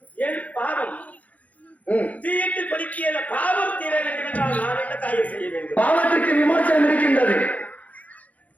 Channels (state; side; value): late; right; 0.072 ms